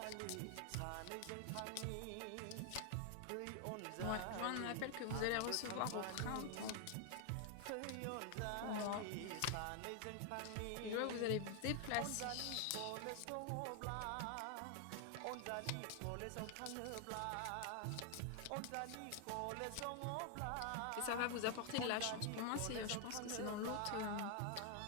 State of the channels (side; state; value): both; different; correlation 0.00